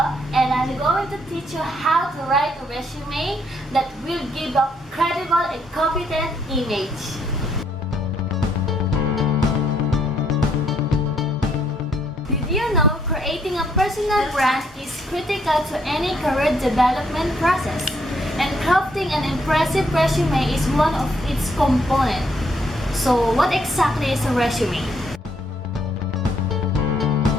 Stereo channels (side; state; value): both; normal; correlation 0.70